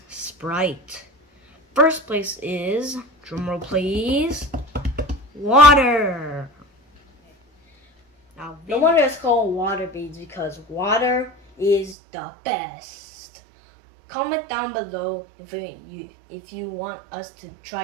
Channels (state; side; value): drops out; left; at 12.0 s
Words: Sprite. First place is, drumroll please, water. Now, no wonder it's called water beads because water is the best. Comment down below if you want us to try